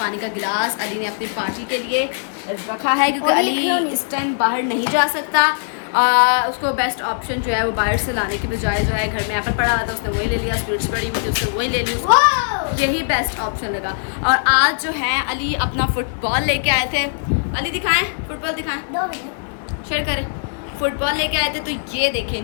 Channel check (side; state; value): right; silent; 62 dB below the other